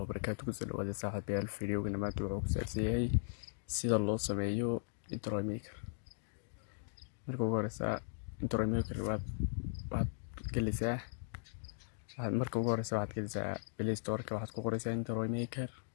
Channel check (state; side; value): silent; right; digital silence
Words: بس الواد صاحب الفيديو قلنا ما توعوك سأسيهي سيدا الله سميو انترو ميكر مركو غورسا انترو ميكر واد كلسا مركو غورسا واد كلسا بلاي ستور كواحد كوغورسا انترو ميكر